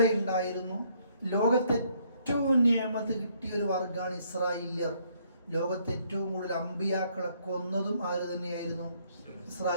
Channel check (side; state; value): both; inverted; correlation -0.67